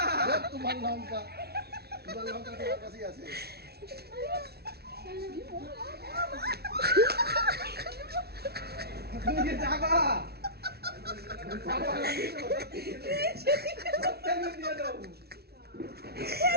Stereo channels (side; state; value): left; late; 0.46 ms